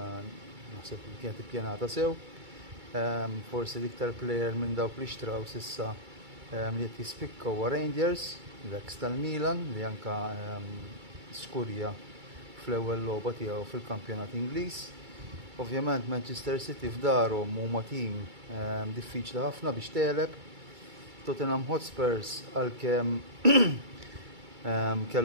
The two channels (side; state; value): left; late; 2.3 ms